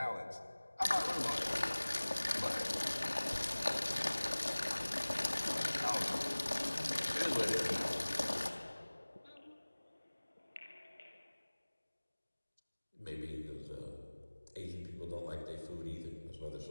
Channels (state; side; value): inverted; both; correlation -1.00